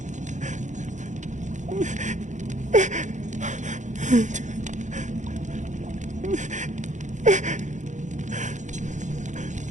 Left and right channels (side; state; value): left; late; 0.35 ms